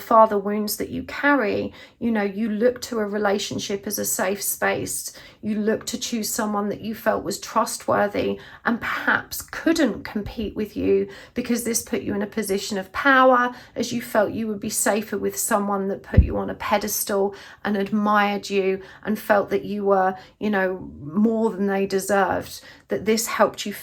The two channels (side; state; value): both; identical; correlation 1.00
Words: wounds that you carry, you know, you look to a relationship as a safe space. You look to choose someone that you felt was trustworthy and perhaps couldn't compete with you, because this put you in a position of power, as you felt you would be safer with someone that put you on a pedestal and admired you and felt that you were, you know, more than they deserved. That this helped you